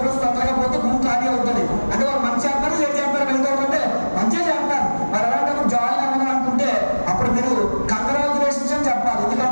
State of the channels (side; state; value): both; inverted; correlation -1.00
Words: తొందరగా పోతే భూమి ఖాళీ అవుతుంది. అంటే వాళ్ళు మంచి చేస్తారు, చెడు చేస్తారు, వెళ్తారంటే మంచిగా చేస్తారు. మరి అలాంటప్పుడు జాయిన్ అవ్వడం అనుకుంటే అప్పుడు మీరు కంగ్రాచులేషన్స్ అని చెప్పాలి.